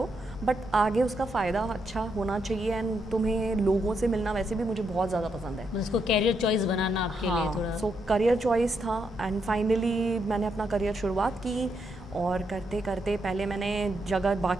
बट आगे उसका फ़ायदा अच्छा होना चाहिए। एंड तुम्हें लोगों से मिलना वैसे भी मुझे बहुत ज़्यादा पसंद है। उसको कैरियर चॉइस बनाना आपके लिए थोड़ा। सो करियर चॉइस था। एंड फाइनली मैंने अपना करियर शुरुआत की, और करते करते पहले मैंने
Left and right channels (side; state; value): left; noise; hum, 18 dB below the sound